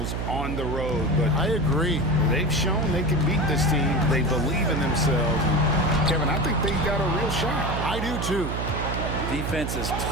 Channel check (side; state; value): right; noise; hum, 3 dB below the sound